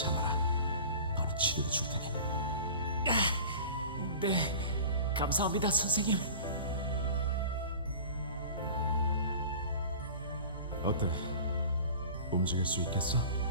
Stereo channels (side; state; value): both; inverted; correlation -0.40